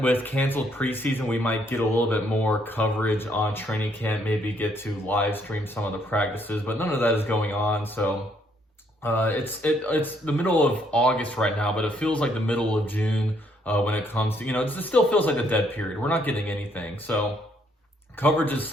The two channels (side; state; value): both; normal; correlation 0.69